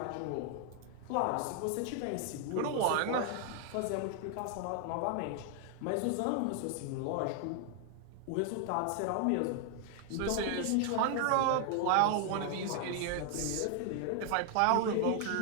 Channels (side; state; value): both; different; correlation 0.00